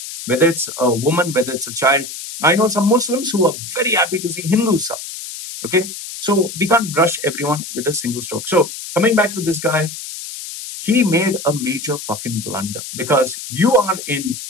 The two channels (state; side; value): noise; left; hiss, 10 dB below the sound